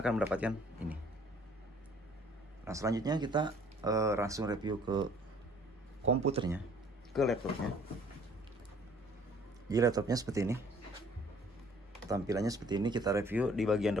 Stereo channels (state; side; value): normal; both; correlation 0.57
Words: mendapatkan ini. Nah, selanjutnya kita langsung review ke komputernya, ke laptopnya. Jadi laptopnya seperti ini, tampilannya seperti ini. Kita review di bagian